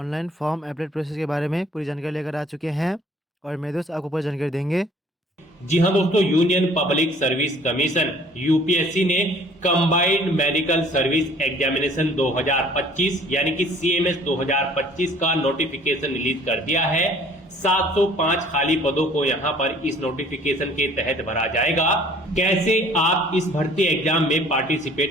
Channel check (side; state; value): both; normal; correlation 0.54